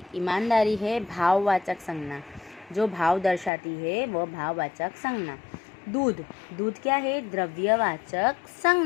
ईमानदारी है भाववाचक संज्ञा, जो भाव दर्शाती है वह भाववाचक संज्ञा। दूध, दूध क्या है? द्रव्यवाचक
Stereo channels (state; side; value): drops out; right; at 3.5 s